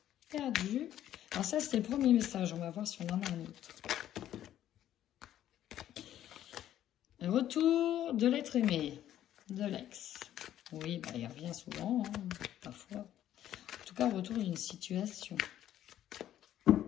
perdu. Alors ça, c'était le premier message. On va voir si on en a un autre. Le retour de l'être aimé, de l'ex. Oui, bah, il revient souvent, hein, parfois. En tout cas, retour d'une situation.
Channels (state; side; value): quieter; right; 11.8 dB